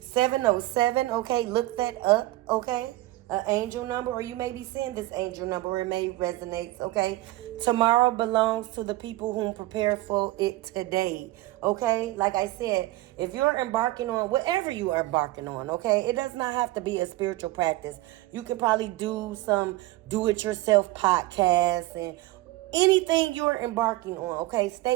707, okay? Look that up, okay? An angel number, or you may be seeing this angel number. It may resonate, okay? Tomorrow belongs to the people who prepare for it today, okay? Like I said, if you're embarking on whatever you are embarking on, okay? It does not have to be a spiritual practice. You could probably do some do-it-yourself podcasts and anything you're embarking on, okay?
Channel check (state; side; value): quieter; left; 18.2 dB